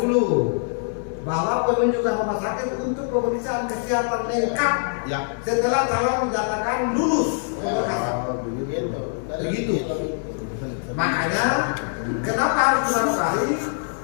bahwa penunjukan rumah sakit untuk pemeriksaan kesehatan lengkap setelah calon dinyatakan lulus. Begitu. Makanya kenapa harus Manokwari?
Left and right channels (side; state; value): right; silent; digital silence